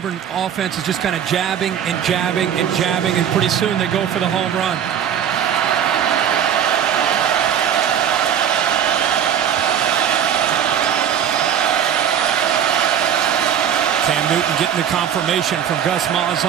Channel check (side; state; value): left; quieter; 8.9 dB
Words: offense is just kind of jabbing and jabbing and jabbing, and pretty soon they go for the home run. Cam Newton getting the confirmation from Gus